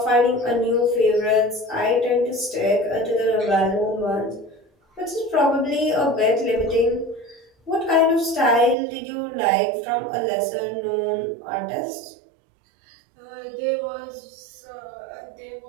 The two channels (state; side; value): drops out; left; at 8.8 s